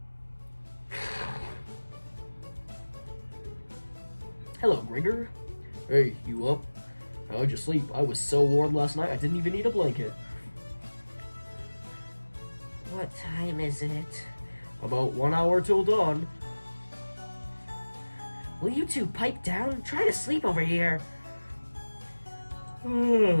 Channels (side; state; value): both; inverted; correlation -1.00